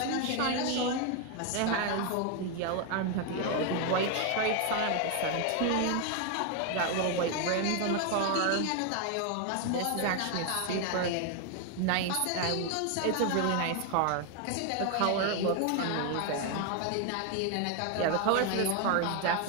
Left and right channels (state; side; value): different; both; correlation 0.01